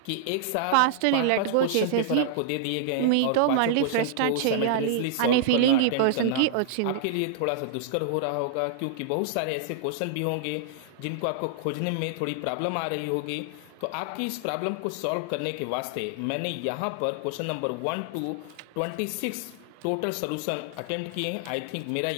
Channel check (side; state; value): both; different; correlation -0.01